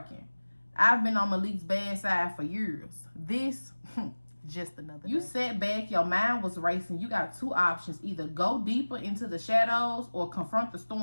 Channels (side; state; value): both; inverted; correlation -1.00